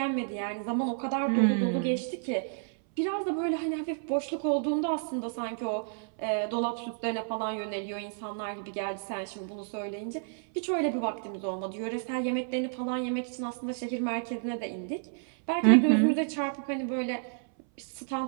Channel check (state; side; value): silent; left; 57 dB below the other